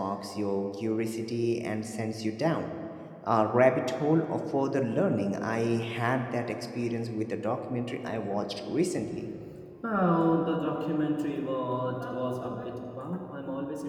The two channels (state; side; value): identical; both; correlation 1.00